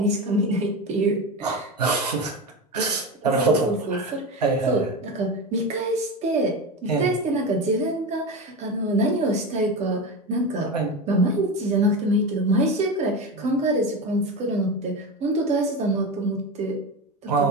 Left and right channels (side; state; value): both; normal; correlation 0.21